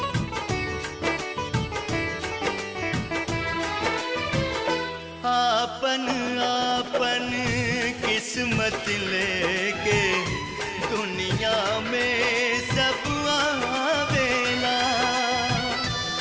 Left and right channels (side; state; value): both; identical; correlation 1.00